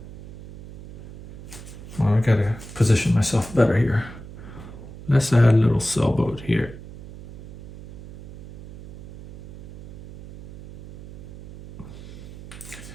Oh, I gotta position myself better here. Let's add a little sailboat here.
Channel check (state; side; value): noise; right; hum, 15 dB below the sound